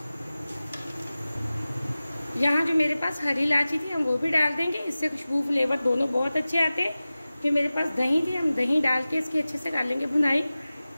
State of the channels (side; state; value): both; inverted; correlation -0.97